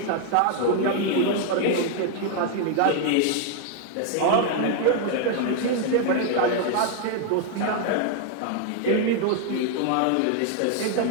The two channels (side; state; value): both; different; correlation 0.00